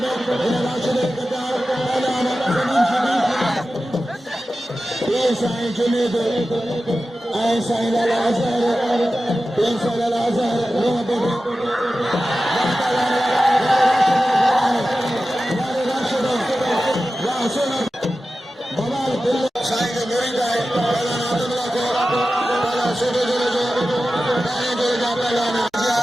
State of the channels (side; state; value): both; normal; correlation 0.94